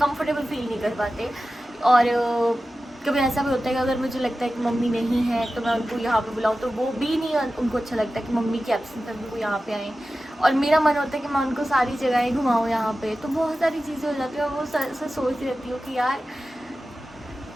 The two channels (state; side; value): normal; both; correlation 0.94